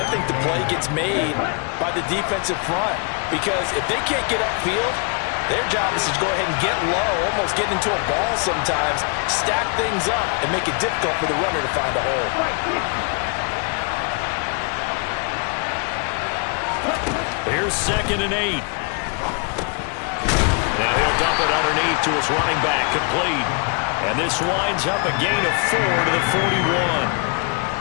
think the play gets made by the defensive front. Because if they can't get upfield, their job is to go ahead and get low, almost get into a ball sometimes, stack things up, and make it difficult for the runner to find a hole. Here's 2nd and 8. Now he'll dump it underneath to his running back, complete. And this winds up a gain of 4 to the 41.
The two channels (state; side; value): quieter; right; 36.8 dB